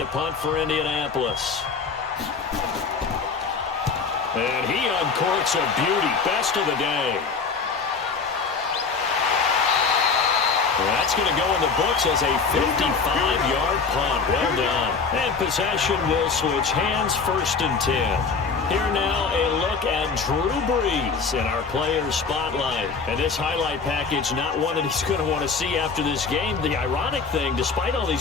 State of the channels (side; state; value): right; quieter; 5.0 dB